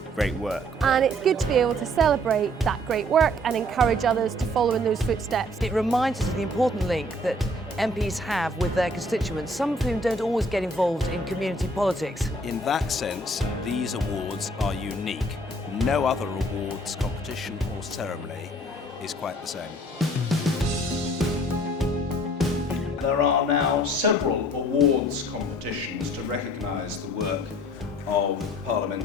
great work. And it's good to be able to celebrate that great work and encourage others to follow in those footsteps. It reminds us of the important link that MPs have with their constituents, some of whom don't always get involved in community politics. In that sense, these awards are unique. No other awards competition or ceremony is quite the same. There are now several awards competitions to recognise the work of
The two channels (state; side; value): normal; both; correlation 0.57